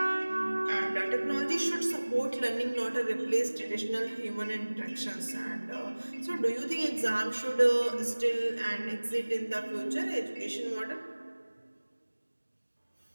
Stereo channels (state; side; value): inverted; both; correlation -1.00